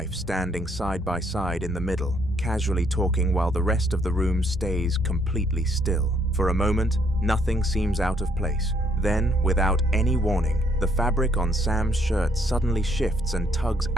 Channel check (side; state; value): both; normal; correlation 0.69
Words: standing side by side in the middle, casually talking while the rest of the room stays completely still. For a moment, nothing seems out of place. Then, without any warning, the fabric on Sam's shirt suddenly shifts and tugs